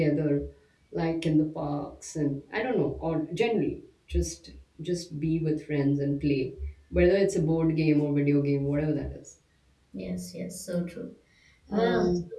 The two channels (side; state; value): both; identical; correlation 1.00